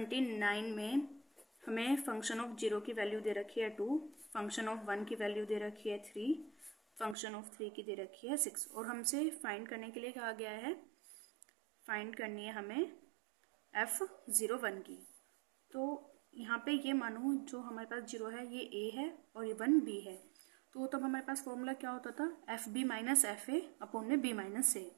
में हमें फंक्शन ऑफ 0 की वैल्यू दे रखी है 2, फंक्शन ऑफ 1 की वैल्यू दे रखी है 3, फंक्शन ऑफ 3 की दे रखी है 6। और हमसे फाइंड करने के लिए कहा गया है, फाइंड करनी है हमें f01 की। तो यहाँ पे ये मानो जो हमारे पास 0 है ये a है और ये 1 b है। तो तब हमारे पास फॉर्मूला क्या होता था, F B minus F A upon में बी माइनस ए।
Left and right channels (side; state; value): left; drops out; at 7.2 s